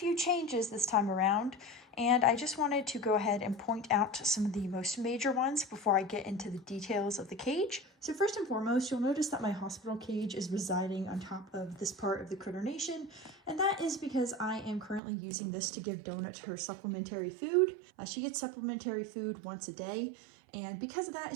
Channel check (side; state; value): left; drops out; at 15.0 s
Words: changes this time around, and I just wanted to go ahead and point out some of the most major ones before I get into the details of the cage. So first and foremost, you'll notice that my hospital cage is residing on top of this part of the critter nation, and that is because I am currently using this to give Donut her supplementary food. She gets supplementary food once a day, and because of that,